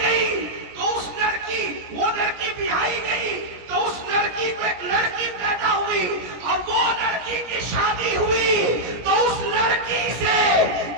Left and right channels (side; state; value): left; late; 17 ms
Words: तो उस लड़की, वो लड़की बिहाई गई तो उस लड़की को एक लड़की पैदा हुई और वो लड़की की शादी हुई तो उस लड़की से